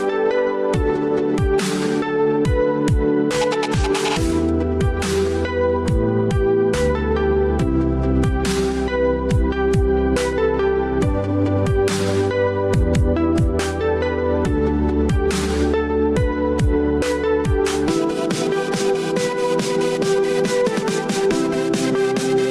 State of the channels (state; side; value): identical; both; correlation 1.00